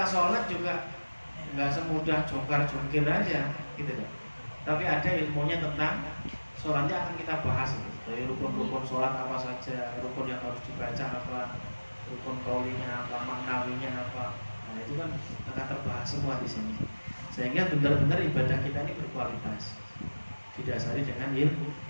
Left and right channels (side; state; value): both; inverted; correlation -1.00